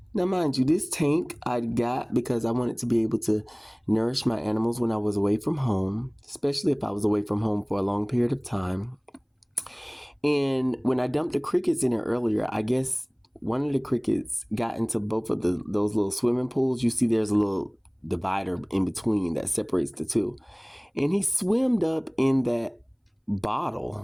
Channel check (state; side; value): identical; both; correlation 1.00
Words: Now, mind you, this tank I got because I wanted to be able to nourish my animals when I was away from home, especially if I was away from home for a long period of time. And when I dumped the crickets in there earlier, I guess one of the crickets got into both of those little swimming pools. You see there's a little divider in between that separates the two. And he swimmed up in that